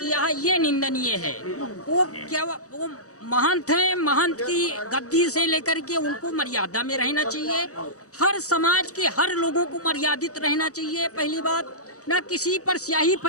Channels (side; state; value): right; late; 0.66 ms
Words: है ये निंदनीय है। वो महंत हैं, महंत की गद्दी से लेकर के उनको मर्यादा में रहना चाहिए। हर समाज के हर लोगों को मर्यादित रहना चाहिए। पहली बात, ना किसी पर स्याही